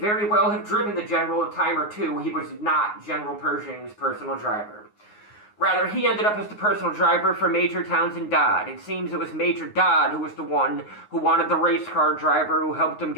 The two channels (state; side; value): late; right; 9.6 ms